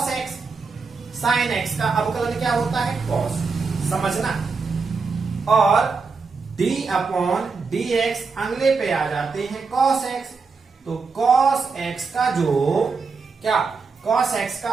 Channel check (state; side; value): quieter; left; 4.7 dB